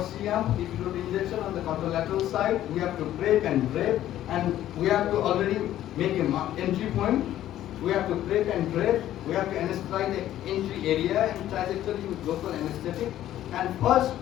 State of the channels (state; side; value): quieter; right; 12.7 dB